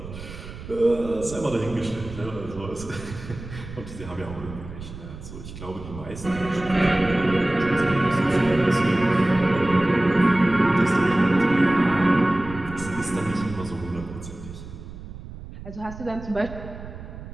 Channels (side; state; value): right; noise; rumble, 13 dB below the sound